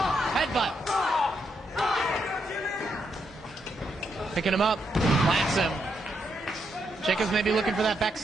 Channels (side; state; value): both; normal; correlation 0.80